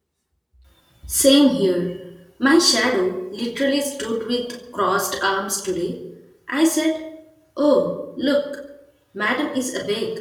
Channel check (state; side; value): identical; both; correlation 1.00